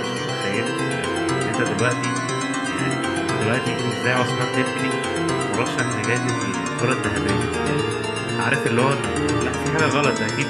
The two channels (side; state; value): both; identical; correlation 1.00